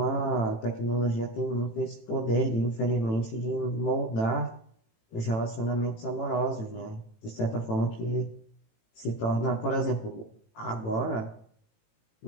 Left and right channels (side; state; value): right; late; 18 ms